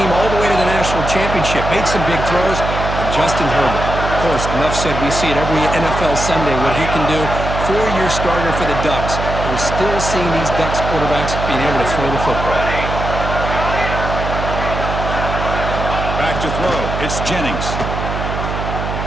all the way to the national championship, made some big throws, and Justin Herbert. Of course, enough said, we see it every NFL Sunday what he can do. 4-year starter for the Ducks. We're still seeing these Ducks quarterbacks being able to throw the football. Back to throw. It's Jennings.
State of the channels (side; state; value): right; noise; hum, 4 dB below the sound